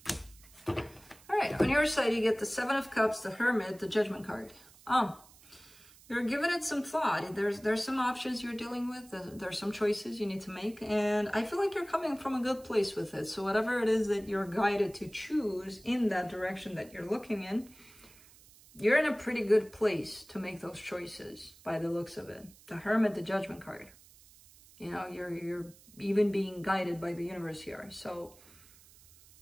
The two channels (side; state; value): right; noise; hiss, 24 dB below the sound